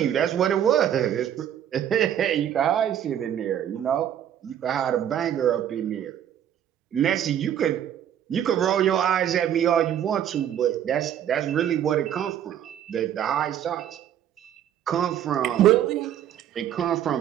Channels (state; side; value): quieter; left; 10.2 dB